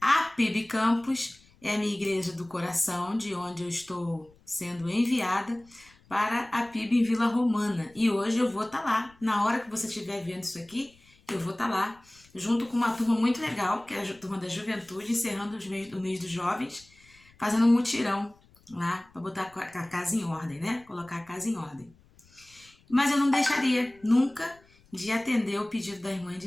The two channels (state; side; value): noise; left; rumble, 29 dB below the sound